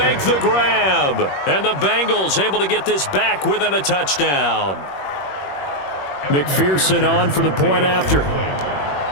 the grab. And the Bengals able to get this back within a touchdown. McPherson on for the point after.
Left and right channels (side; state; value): right; late; 21 ms